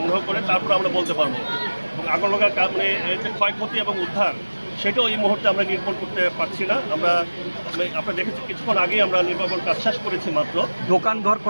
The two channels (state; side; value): inverted; both; correlation -1.00